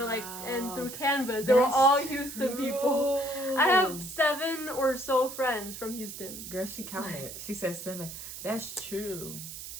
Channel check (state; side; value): noise; right; hiss, 10 dB below the sound